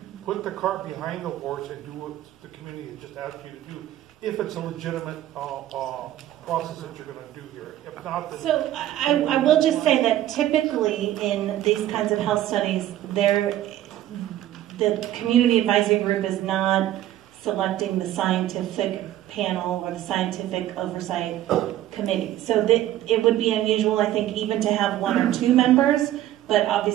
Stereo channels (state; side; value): quieter; left; 13.3 dB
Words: Put the cart behind the horse and do what the community has just asked you to do, if it's a legitimate process that you're going to do here. If not, then... So I will just say that typically in these kinds of health studies, the community advisory group is not selecting the scientific panel or the scientific oversight committee. So it would be unusual, I think, even to have 1 or 2 members, but